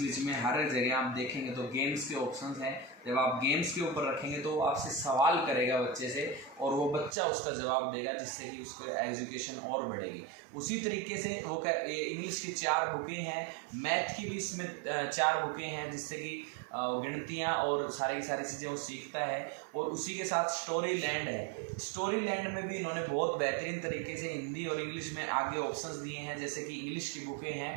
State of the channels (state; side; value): drops out; left; at 7.2 s